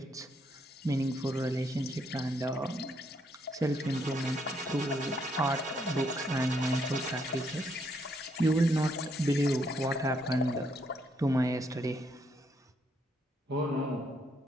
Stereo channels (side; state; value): both; normal; correlation 0.74